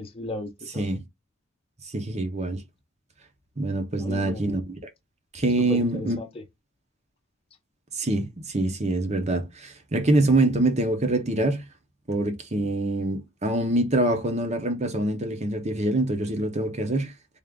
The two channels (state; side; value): normal; both; correlation 0.55